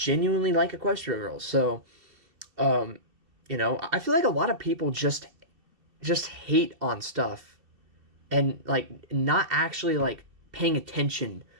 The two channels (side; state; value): left; late; 2.7 ms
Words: like Equestria Girls. So, you know, I feel like a lot of people just hate on stuff, and like not actually like paying attention